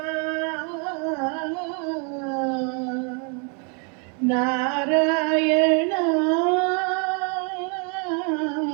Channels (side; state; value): left; quieter; 38.2 dB